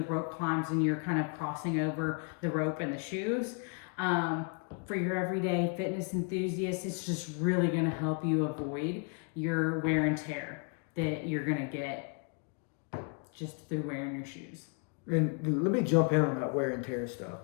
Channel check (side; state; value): right; quieter; 37.9 dB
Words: rope climbs and you're kind of crossing over the rope and the shoes. For your everyday fitness enthusiasts, it's just really going to help you avoid your wear and tear that you're going to get just through wearing your shoes. And let me jump in on that wear and tear stuff,